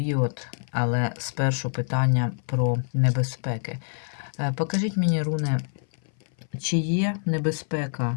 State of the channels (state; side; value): silent; right; 58 dB below the other